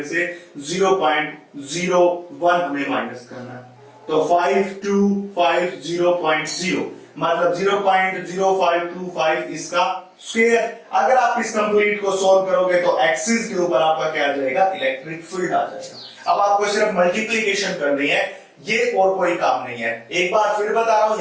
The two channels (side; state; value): both; identical; correlation 1.00